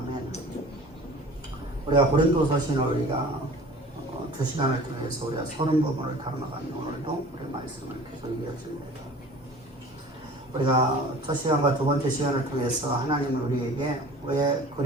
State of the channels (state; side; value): normal; both; correlation 0.44